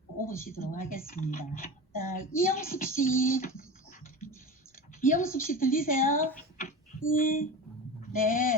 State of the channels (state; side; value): normal; both; correlation 0.30